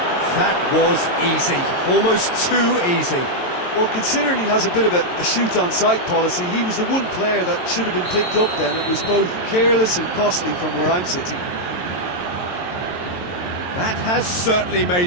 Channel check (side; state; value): right; late; 22 ms